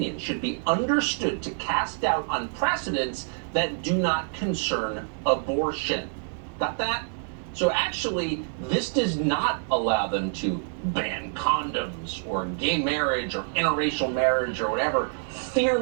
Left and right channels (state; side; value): silent; left; 60 dB below the other